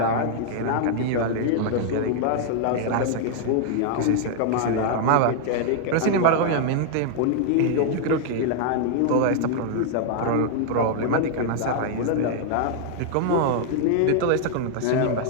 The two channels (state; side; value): different; both; correlation -0.01